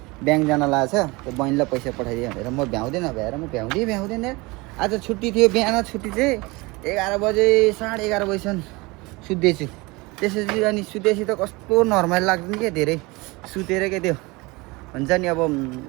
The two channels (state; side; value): quieter; left; 24.2 dB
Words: ब्याङ्क जान लागेको छ त्यो बहिनीलाई पैसा पठाइदियो भनेर म भ्याउँदैन भ्याएर म भ्याउँदैन आज छुट्टी थियो बिहान छुट्टी चाहिँ 11 बजे 11:30 बजीसम्म सुत्दैछु त्यसपछि अनि सुतेपछि त कस्तो नर्मल लाग्दैन क्या धेरै सुतेर क्या त्यो हुन्छ नि अब